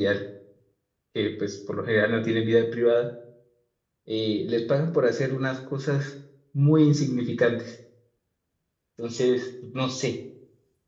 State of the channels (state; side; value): identical; both; correlation 1.00